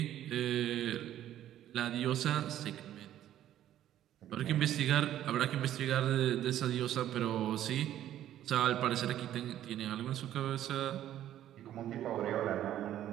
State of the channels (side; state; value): left; quieter; 12.0 dB